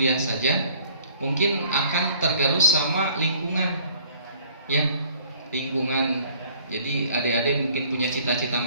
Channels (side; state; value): both; inverted; correlation -0.56